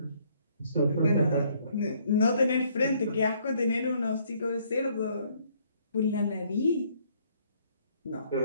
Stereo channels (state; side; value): inverted; both; correlation -0.65